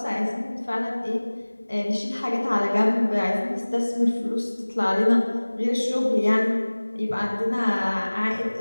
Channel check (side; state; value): both; inverted; correlation -1.00